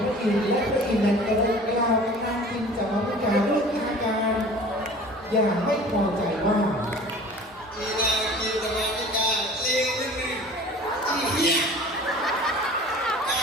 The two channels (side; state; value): both; normal; correlation 0.43